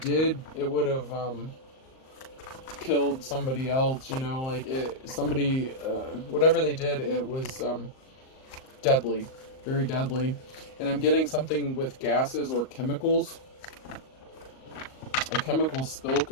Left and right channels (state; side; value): late; right; 38 ms